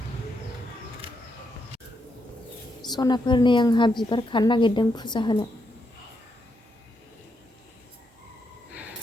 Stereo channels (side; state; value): both; normal; correlation 0.80